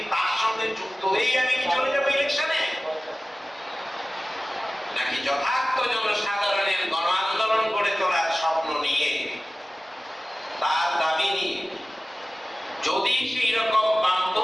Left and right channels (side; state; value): both; normal; correlation 0.97